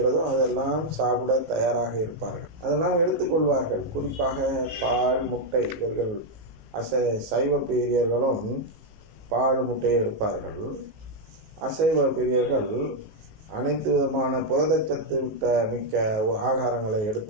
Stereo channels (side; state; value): left; late; 18 ms